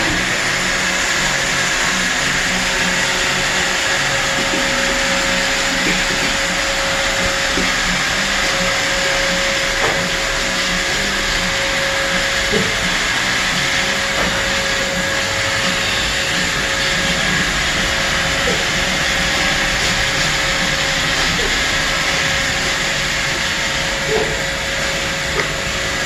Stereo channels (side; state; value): both; identical; correlation 1.00